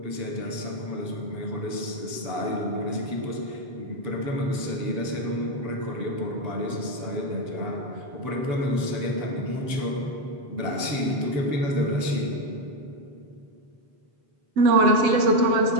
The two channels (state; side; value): late; left; 7.4 ms